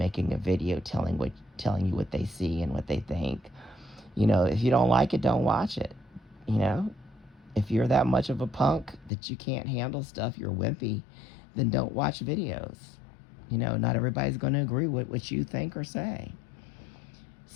a video telling you what they see and what they think. You know, if you don't like it, don't watch it. You know, if you're that much of a punk that you can't handle stuff, you're wimpy, then don't watch videos. You know, not everybody's going to agree with what you think or say.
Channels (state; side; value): drops out; right; at 9.1 s